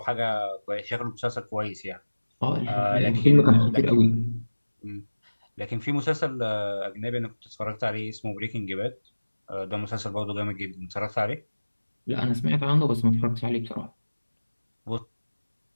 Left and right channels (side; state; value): both; inverted; correlation -1.00